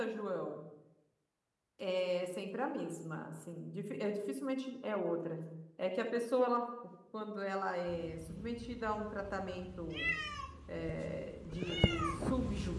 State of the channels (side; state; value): both; identical; correlation 1.00